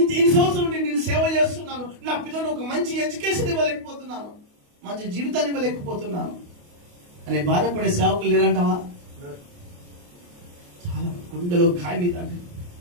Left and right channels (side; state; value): left; late; 28 ms